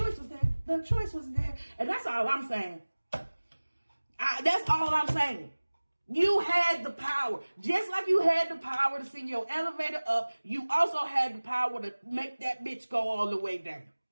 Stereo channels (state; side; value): inverted; both; correlation -1.00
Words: was there. The choice was there. And that's all I'm saying. That's all I'm saying. You had the power. Just like you had the power to send your elevator up, you also had the power to make that bitch go all the way down.